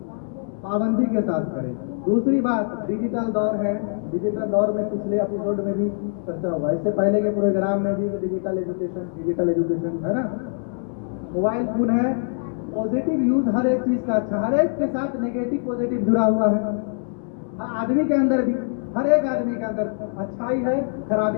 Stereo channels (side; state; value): right; silent; digital silence